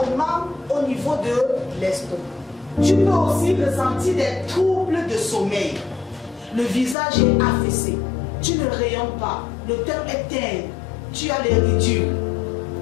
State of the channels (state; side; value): drops out; right; at 7.0 s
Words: au niveau de l'estomac. Tu peux aussi ressentir des troubles de sommeil. Le visage est affaissé. Tu ne rayonnes pas. Le teint est terne. Tu as les ridules.